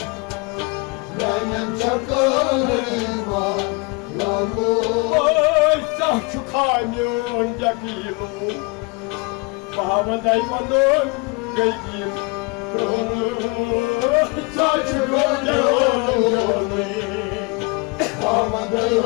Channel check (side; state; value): right; quieter; 29.7 dB